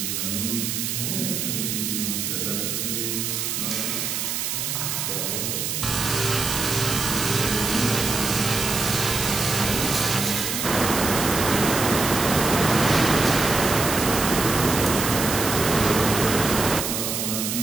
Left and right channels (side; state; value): right; noise; hiss, 2 dB below the sound